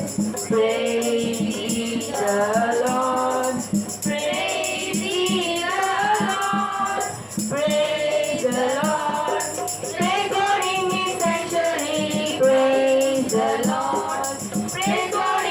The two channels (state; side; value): identical; both; correlation 1.00